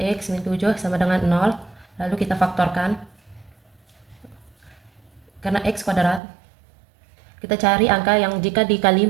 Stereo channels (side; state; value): left; drops out; at 6.2 s